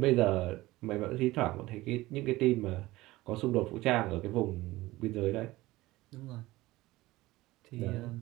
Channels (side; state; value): left; quieter; 18.6 dB